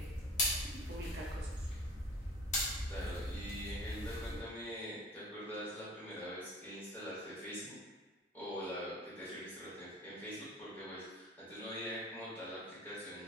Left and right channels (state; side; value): normal; both; correlation 0.43